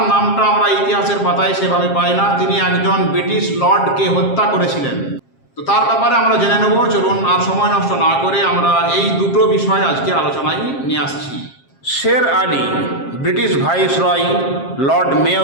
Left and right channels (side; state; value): right; late; 7.5 ms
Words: নামটা আমরা ইতিহাসের পাতায় সেভাবে পাই না। তিনি একজন ব্রিটিশ লর্ডকে হত্যা করেছিলেন। তো তার ব্যাপারে আমরা জেনে নেব। চলুন আর সময় নষ্ট না করে আমরা এই দুটো বিষয় আজকে আলোচনায় নিয়ে আসছি। শের আলী ব্রিটিশ ভাইসরয় লর্ড